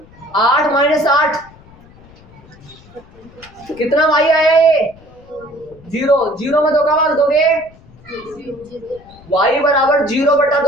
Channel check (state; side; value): noise; left; rumble, 24 dB below the sound